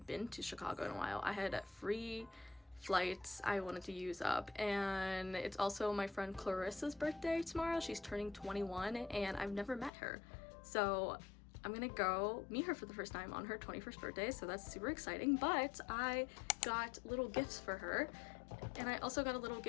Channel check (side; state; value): right; drops out; at 9.9 s